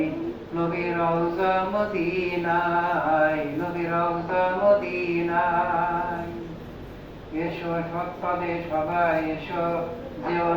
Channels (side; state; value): both; identical; correlation 1.00